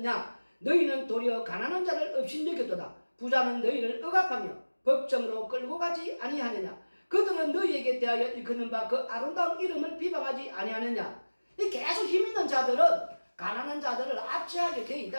너희는 도리어 가난한 자를 업신여겼도다. 부자는 너희를 억압하며 법정으로 끌고 가지 아니하느냐. 그들은 너희에게 대하여 일컫는 바 그 아름다운 이름을 비방하지 아니하느냐. 계속 힘있는 자들은 가난한 자들을 압제하게 되어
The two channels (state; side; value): inverted; both; correlation -1.00